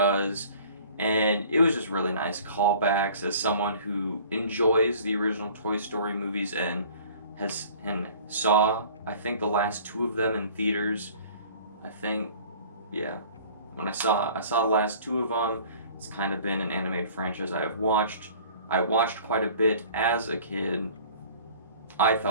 and it was just really nice callbacks. As someone who enjoys the original Toy Story movies and saw, I think, the last two of them in theaters. When I saw the last two of them, it's kind of been an animated franchise I have watched. I watched quite a bit as a kid. I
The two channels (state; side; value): inverted; both; correlation -0.49